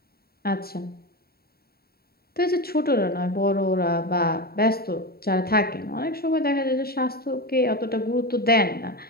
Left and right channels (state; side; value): late; right; 0.45 ms